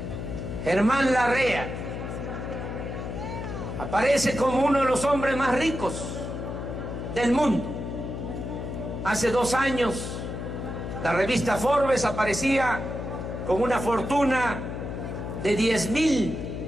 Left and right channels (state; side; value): noise; left; hum, 6 dB below the sound